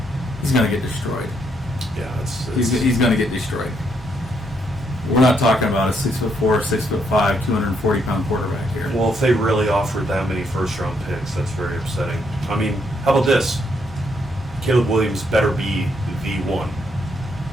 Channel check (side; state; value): both; normal; correlation 0.74